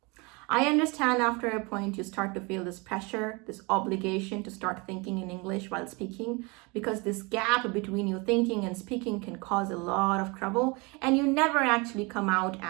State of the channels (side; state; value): left; quieter; 27.8 dB